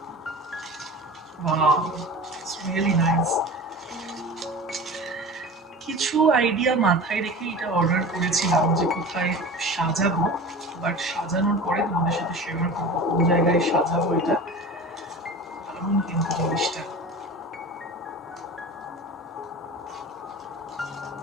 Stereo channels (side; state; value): both; normal; correlation 0.35